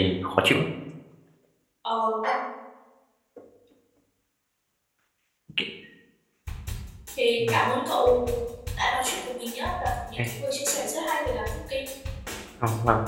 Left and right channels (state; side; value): identical; both; correlation 1.00